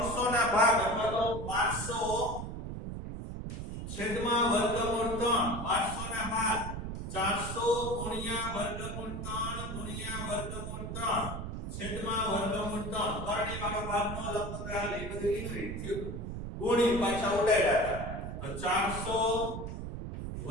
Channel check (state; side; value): noise; right; rumble, 6 dB below the sound